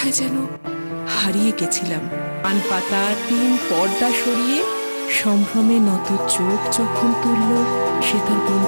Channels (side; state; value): both; inverted; correlation -1.00